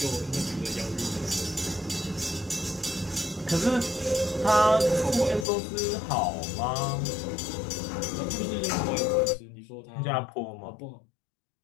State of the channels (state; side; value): drops out; right; at 5.5 s